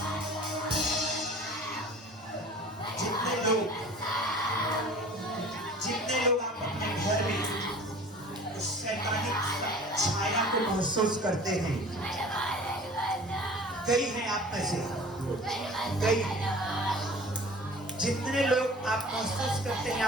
जितने लोग आप अपने घर में उस शैतानी छाया को महसूस करते हैं, कई हैं आप में से, कई जितने लोग आप महसूस करते हैं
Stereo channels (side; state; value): both; normal; correlation 0.44